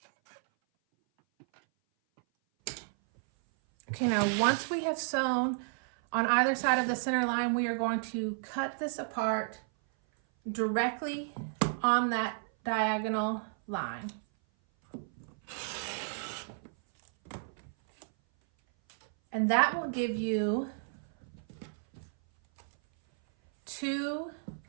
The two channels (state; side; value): silent; left; 56 dB below the other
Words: Okay, now once we have sewn on either side of the center line, we are going to cut this apart directly on that diagonal line. And that will give you 2